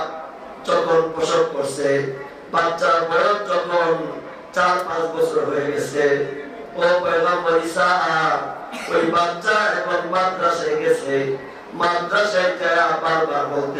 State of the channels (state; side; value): identical; both; correlation 1.00